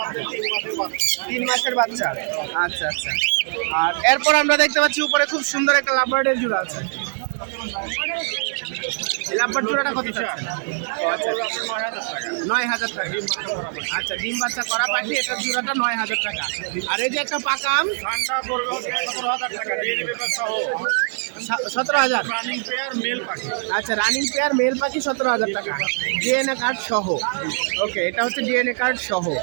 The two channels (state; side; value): silent; left; 59 dB below the other